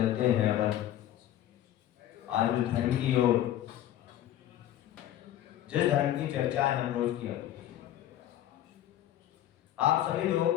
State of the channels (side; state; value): right; quieter; 12.3 dB